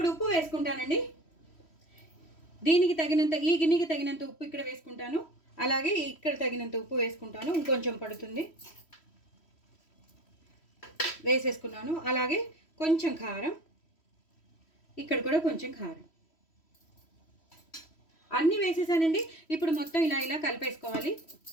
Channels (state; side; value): late; right; 3.1 ms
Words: ఉప్పు వేసుకుంటానండి. దీనికి తగినంత, ఈ గిన్నెకి తగినంత ఉప్పు ఇక్కడ వేసుకుంటాను. అలాగే ఇక్కడ తగినంత ఉప్పు వేసుకుంటాను, ఇంకొంచెం పడుతుంది, వేసేసుకున్నాను. అలాగే కొంచెం కారం, ఇక్కడ కూడా కొంచెం కారం, అన్నీ వేసేసానండి. ఇప్పుడు మొత్తం ఇలా కలిపేసుకోవాలి.